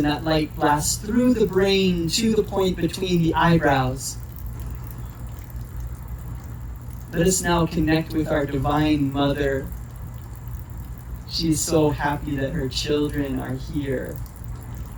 that light blasts through the brain to the point between the eyebrows. Let us now connect with our Divine Mother. She is so happy that her children are here.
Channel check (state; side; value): identical; both; correlation 1.00